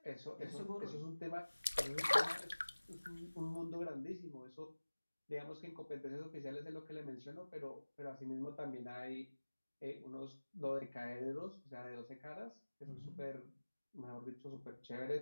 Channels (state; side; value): inverted; both; correlation -1.00